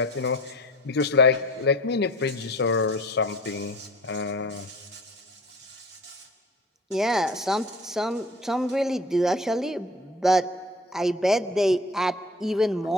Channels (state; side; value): normal; both; correlation 0.43